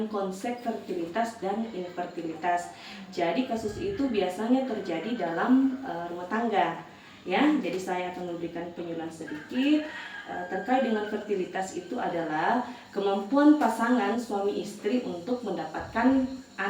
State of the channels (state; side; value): identical; both; correlation 1.00